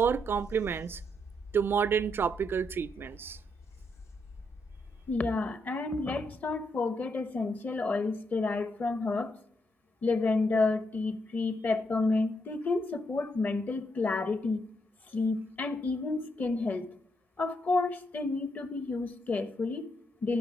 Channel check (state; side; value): normal; both; correlation 0.78